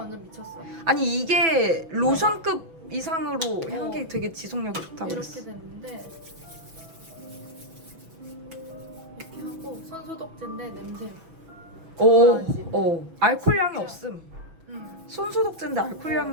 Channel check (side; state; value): left; late; 6.1 ms